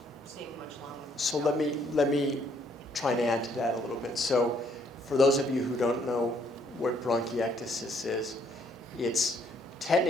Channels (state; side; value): normal; both; correlation 0.67